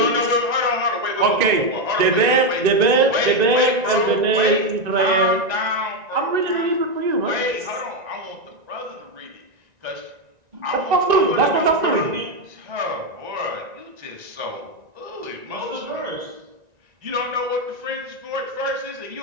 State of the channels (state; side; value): late; left; 1.9 ms